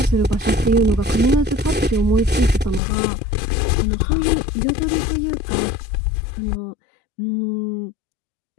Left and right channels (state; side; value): drops out; right; at 2.8 s